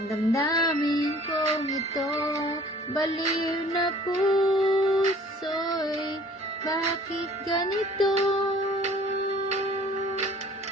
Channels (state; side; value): normal; both; correlation 0.52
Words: damdamin kong ito? Baliw na puso'y bakit ganito?